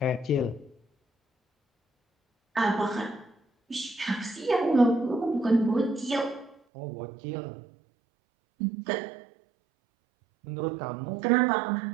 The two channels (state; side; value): drops out; left; at 6.6 s